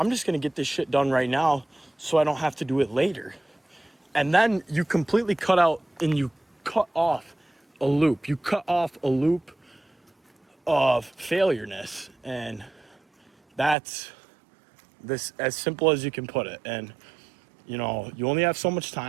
just going to get this shit done right now so I don't have to do it later. And then you completely cut out and you cut off a loop. You cut off a loop of failureness. And that's this as simple as you can put it. And you know, you only have so much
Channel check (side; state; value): left; drops out; at 13.8 s